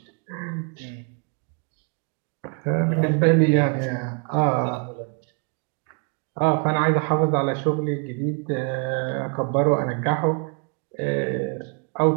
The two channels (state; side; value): quieter; left; 37.8 dB